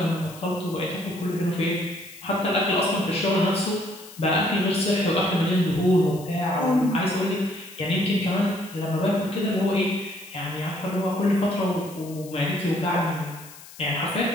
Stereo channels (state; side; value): noise; left; hiss, 18 dB below the sound